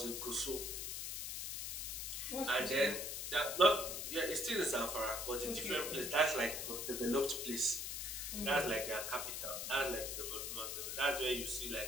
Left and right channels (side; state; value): left; noise; hiss, 4 dB below the sound